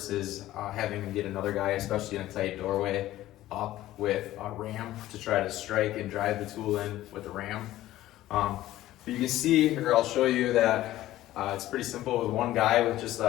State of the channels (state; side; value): quieter; right; 14.9 dB